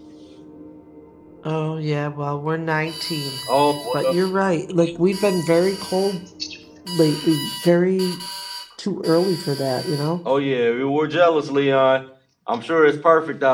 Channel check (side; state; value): both; identical; correlation 1.00